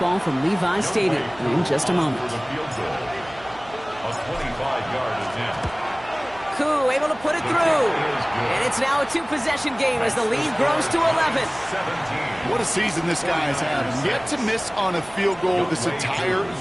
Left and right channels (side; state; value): right; noise; hum, 21 dB below the sound